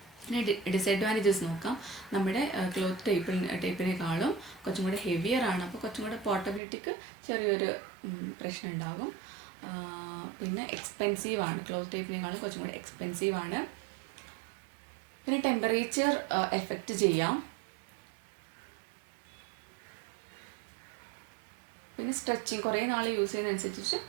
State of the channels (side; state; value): left; drops out; at 6.6 s